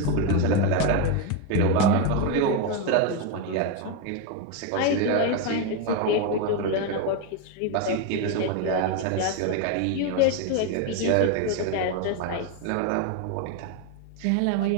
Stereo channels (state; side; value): different; both; correlation 0.02